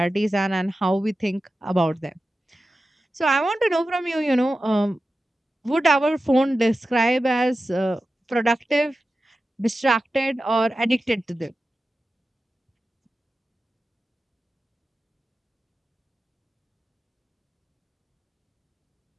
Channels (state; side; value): normal; both; correlation 0.93